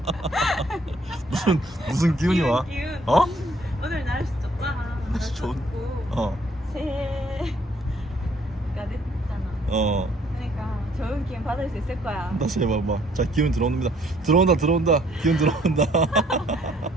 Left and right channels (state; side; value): normal; both; correlation 0.63